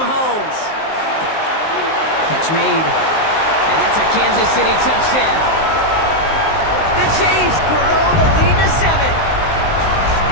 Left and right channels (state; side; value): late; right; 19 ms